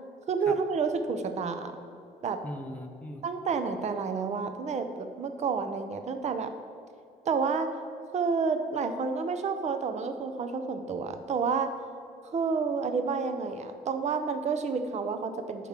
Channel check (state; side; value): quieter; left; 4.7 dB